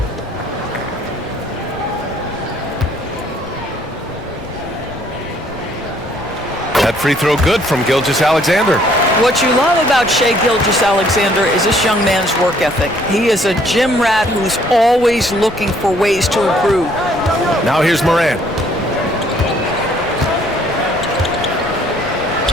That free throw good from Gilgeous-Alexander. What you love about Shai Gilgeous-Alexander is this young man's work ethic. He is a gym rat who's always looking for ways to improve. Now here's Morant.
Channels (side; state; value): left; noise; rumble, 17 dB below the sound